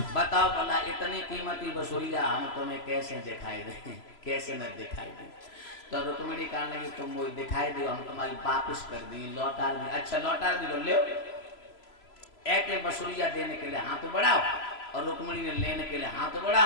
बताओ भला इतनी कीमती बसुरिया हम तुम्हें कैसे दिखाई दे, कैसे न दिखाई दे। तो रुक्मिणी कहने लगी तुम मुझे दिखाई दो, हम तुम्हारी वापस कर दी लौटा दी, अच्छा लौटा दी लो एक बसुरिया देने के लिए हाथ बढ़ाओ, और रुक्मिणी ने लेने के लिए हाथ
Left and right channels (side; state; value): right; late; 3.0 ms